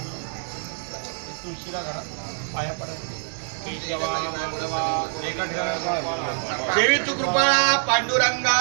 तुळशीला घरा पाया पडा. केशवा माधवा देवी तू कृपाळा पांडुरंगा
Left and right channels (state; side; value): silent; left; digital silence